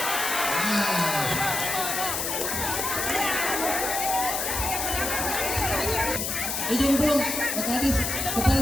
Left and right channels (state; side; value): noise; left; hiss, 1 dB below the sound